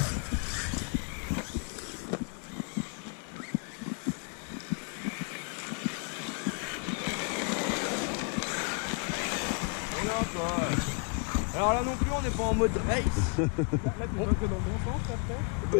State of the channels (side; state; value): right; quieter; 36.9 dB